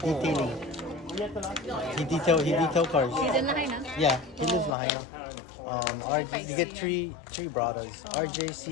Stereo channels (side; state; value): right; drops out; at 4.8 s